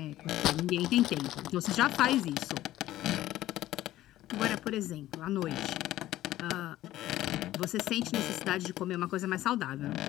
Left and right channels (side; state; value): right; quieter; 14.7 dB